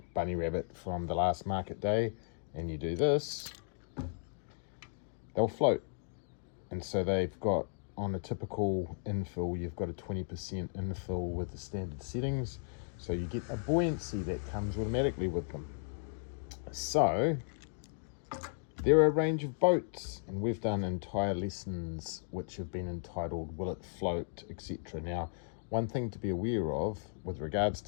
bunny rabbit from the last market day, and you do this, they'll float. And so they've got, on a typical infill, you've got a 20% infill with the standard settings. So you get a buoyancy that comes automatically with them. So there are a range of boats, and we've done entire lessons which have been entitled Will It Float, etc. Now, one thing to be aware of with regards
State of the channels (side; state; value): right; silent; digital silence